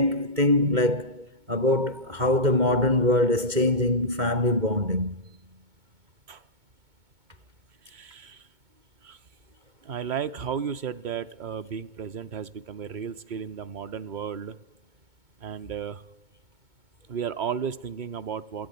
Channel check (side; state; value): left; late; 2.1 ms